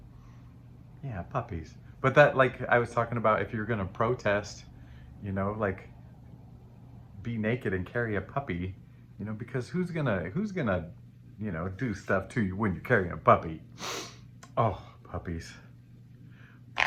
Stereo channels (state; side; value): identical; both; correlation 1.00